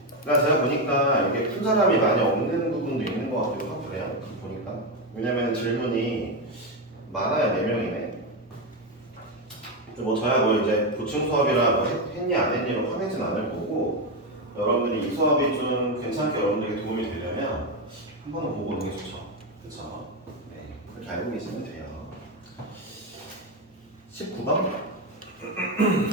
그러니까 제가 보니까 이게 푼 사람이 많이 없는 부분도 있는 것 같기도 하고 그래요. 보니까. 왜냐면 질문이 많아요. 4명이네. 뭐 저야 뭐 이제 보충 수업이라 뭐 했니 안 했니로 화내진 않을 거고, 여러분들이 이 수업이 좀 괜찮게 여러분들에게 도움이 되려면 한 번은 보고 오는 게 좋죠. 그렇죠? 네, 그렇게 알고 계시면 돼요. 19번?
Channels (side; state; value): both; normal; correlation 0.09